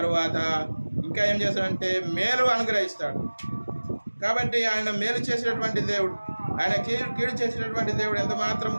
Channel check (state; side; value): inverted; both; correlation -1.00